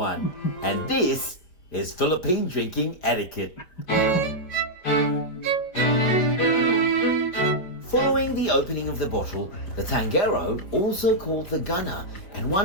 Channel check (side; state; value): right; late; 5.1 ms